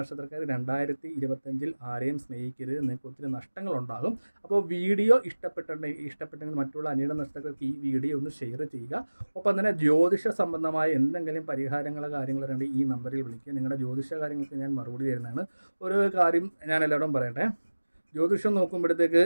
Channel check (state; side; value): inverted; both; correlation -1.00